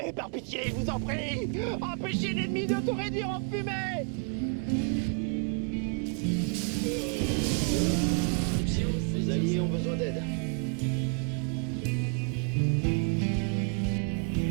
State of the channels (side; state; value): left; quieter; 38.7 dB